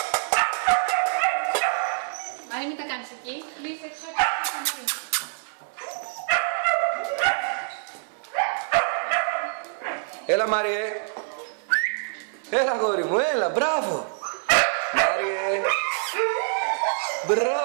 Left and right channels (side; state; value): left; silent; 61 dB below the other